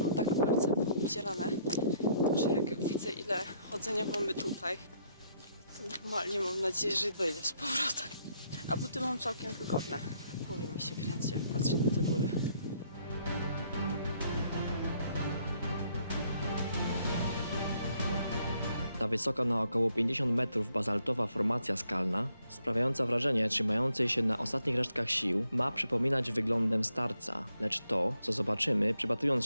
tak palce obcierane, że jak widzę, ile chodzenia mamy tutaj, to normalnie mam nadzieję, że dojdę z powrotem. A buty mam całkiem wygodne. W głowie mi się kręci, jak patrzę na te góry. Ta wysoka na około 50 metrów bazaltowa formacja skalna, sprawiająca wrażenie trzymającej się na ostatnich resztkach sił, ma przypominać wyglądem starca, lecz to, co zobaczymy, przypatrując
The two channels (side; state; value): both; inverted; correlation -0.71